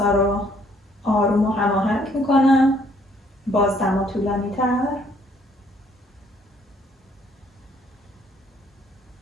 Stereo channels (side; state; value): both; normal; correlation 0.64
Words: رو آروم و هماهنگ میکنم، باز دما طولانی تر.